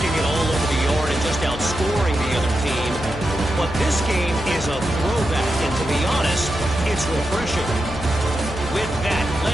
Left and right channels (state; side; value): noise; left; hum, 11 dB below the sound